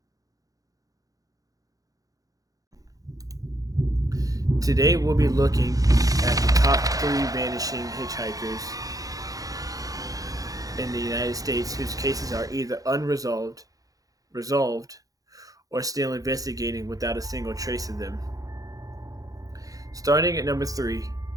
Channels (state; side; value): late; left; 0.17 ms